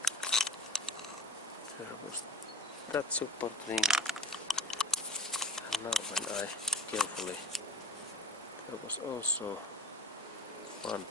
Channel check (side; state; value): both; normal; correlation 0.37